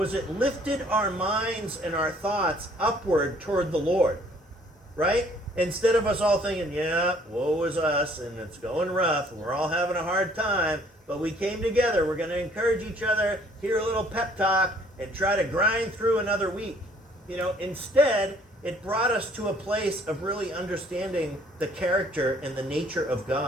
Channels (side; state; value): both; normal; correlation 0.59